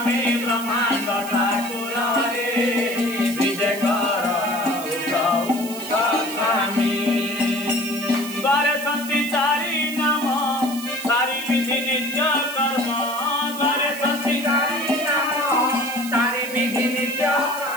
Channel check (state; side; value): noise; right; hiss, 12 dB below the sound